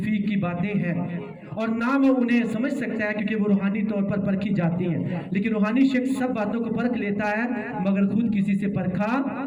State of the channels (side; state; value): both; identical; correlation 1.00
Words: की बातें हैं, और ना वो उन्हें समझ सकता है, क्योंकि वो रूहानी तौर पर परखी जाती हैं। लेकिन रूहानी शख्स सब बातों को परख लेता है, मगर खुद किसी से परखा